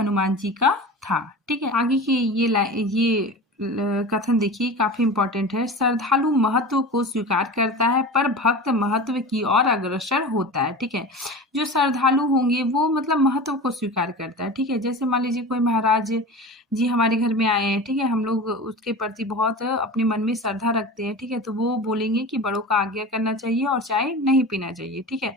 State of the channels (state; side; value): normal; both; correlation 0.32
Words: जी का था। ठीक है, आगे की ये कथन देखिए, काफी इंपॉर्टेंट है। श्रद्धालु महत्व को स्वीकार करता है पर भक्त महत्व की ओर अग्रसर होता है। ठीक है, जो श्रद्धालु होंगे वो मतलब महत्व को स्वीकार करता है। ठीक है, जैसे मान लीजिए कोई महाराज जी हमारे घर में आए हैं, ठीक है, हम लोग उसके प्रति बहुत अपने मन में श्रद्धा रखते हैं। ठीक है, तो वो बोलेंगे कि बड़ों का आज्ञा करना चाहिए और चाय नहीं पीना चाहिए। ठीक